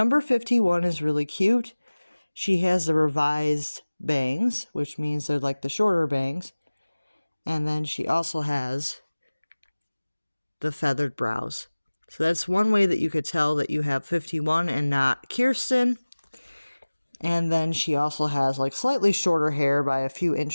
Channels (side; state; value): both; inverted; correlation -1.00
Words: 51 is really cute. She has the revised bangs, which means they're like the shorter bangs, and then she also has the feathered brows. So that's one way that you could tell that you have 51 and not Kirsten. And then she also has like slightly shorter hair by a few